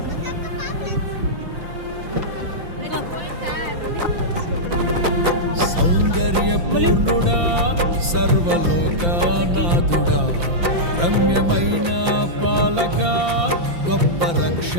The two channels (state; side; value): late; left; 5.9 ms